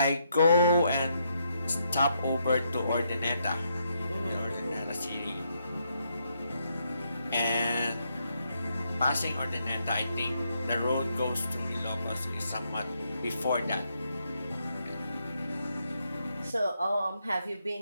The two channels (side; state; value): both; inverted; correlation -0.78